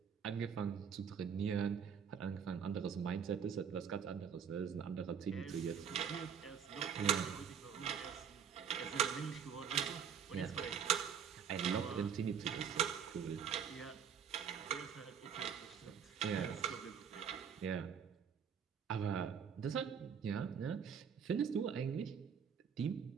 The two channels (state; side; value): quieter; left; 7.4 dB